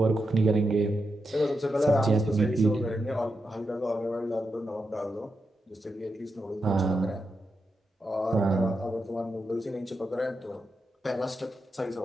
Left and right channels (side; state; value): both; normal; correlation 0.87